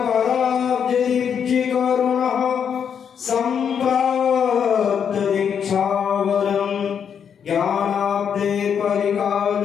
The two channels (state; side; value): quieter; right; 7.6 dB